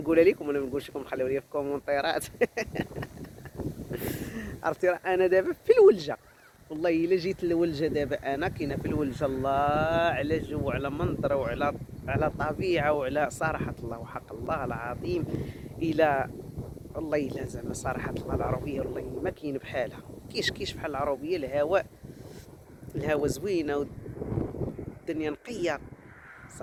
لكم ولا ما نقولش لكم؟ خليو لي في الكومونتيرات. عرفتي راه انا دابا في الولجه، والله الا جيت للولجه دابا انا كاينه في الولجه. الله على جو وعلى منظر وعلى طبيعه وعلى صراحه الله وحق الله العظيم. الى والله الا زعما صراحه الله العربيه والله ما كاين بحالها. كيش بحال العربيه. الهواء زوينه والدنيا نقيه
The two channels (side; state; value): both; identical; correlation 1.00